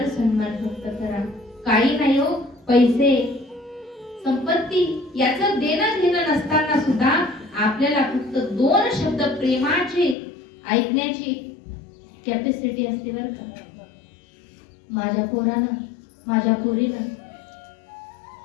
सन्मान फक्त करा. काही नाही हो, पैसे संपत्ती याचं देणं घेणं नसताना सुद्धा आपल्याला फक्त 2 शब्द प्रेमाचे ऐकण्याची कॅपॅसिटी असते बरं का. माझ्या पोरानं, माझ्या पोरीनं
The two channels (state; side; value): drops out; right; at 10.2 s